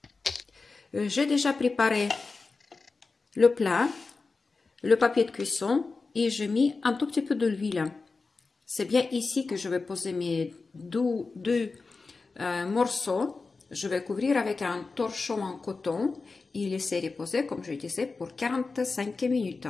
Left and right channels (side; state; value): right; quieter; 4.1 dB